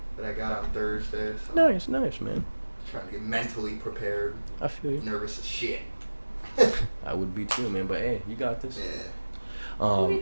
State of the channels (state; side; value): inverted; both; correlation -1.00